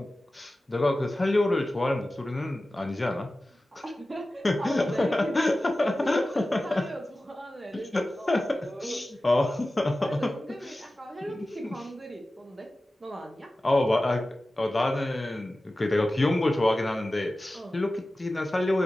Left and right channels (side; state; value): both; normal; correlation 0.95